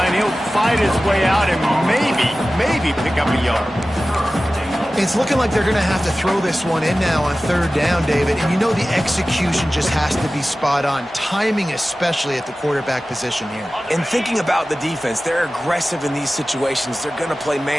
He'll fight his way out and maybe pick up a yard. It's looking like they're going to have to throw this one in now on 3rd down, David. And you know the execution just has to be spot on. Timing especially at the quarterback position here. And thinking about the defense, they're aggressive in these situations. They're going to play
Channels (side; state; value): both; normal; correlation 0.96